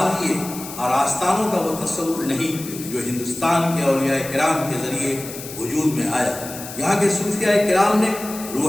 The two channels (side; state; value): left; noise; hiss, 12 dB below the sound